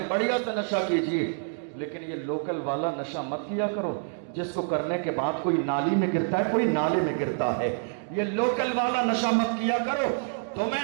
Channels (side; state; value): left; silent; digital silence